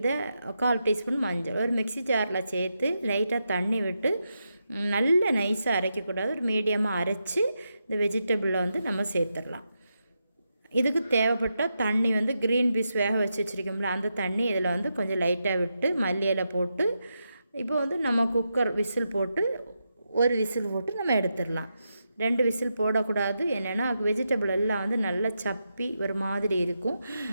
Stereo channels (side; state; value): both; inverted; correlation -0.86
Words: 1/4 டீஸ்பூன் மஞ்சள் ஒரு மிக்ஸி ஜாரில் சேர்த்து லைட்டாக தண்ணி விட்டு நல்ல நைஸாக அரைக்கக்கூடாது, ஒரு மீடியமாக அரைச்சி இந்த வெஜிடபிளில் நம்ம சேர்த்துடலாம். இதுக்கு தேவைப்பட்ட தண்ணி க்ரீன் பீஸ் வேக வச்சு வச்சுருக்கோம்ல, அந்த தண்ணி இதில் கொஞ்சம் லைட்டாக விட்டு மல்லியில் போட்டு இப்போ நம்ம குக்கர் விசில் போட்டு ஒரு விசில் போட்டு நம்ம எடுத்துடலாம். 2 விசில் போடக்கூடாது. என்னென்னா வெஜிடபிள் எல்லாம் நல்லா சப்பி ஒரு மாதிரி இருக்கும்,